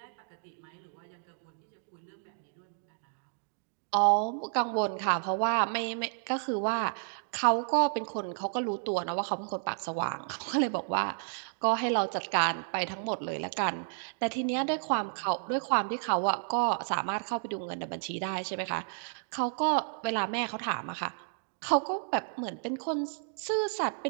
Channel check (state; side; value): silent; left; digital silence